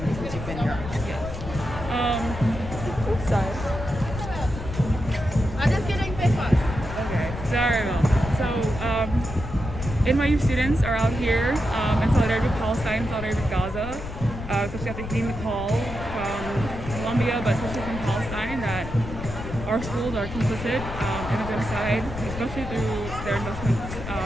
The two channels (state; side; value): noise; left; rumble, 9 dB below the sound